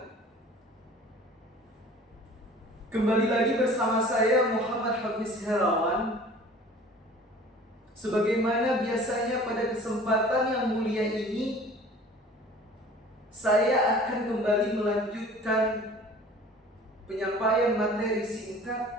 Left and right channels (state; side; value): normal; both; correlation 0.46